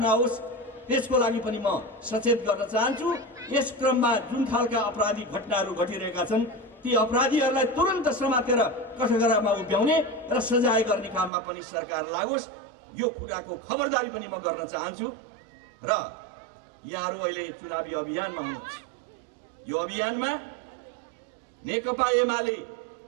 त्यसको लागि पनि म सचेत गर्न चाहन्छु। यस क्रममा जुन खालका आपराधिक घटनाहरू घटिरहेका छन्, ती अपराधीहरूलाई तुरन्त समातेर कठघरामा उभ्याउने र सजाय गर्ने काममा पनि सरकार लागोस्। यो कुराको खबरदारी पनि म गर्न चाहन्छु। र यहाँहरू अहिले चुनावी अभियानमा हुनुहुन्छ। यो अभियानमा नेकपा एमाले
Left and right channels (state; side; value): drops out; left; at 11.3 s